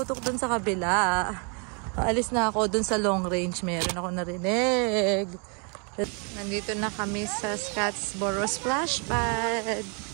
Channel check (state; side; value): quieter; left; 36.4 dB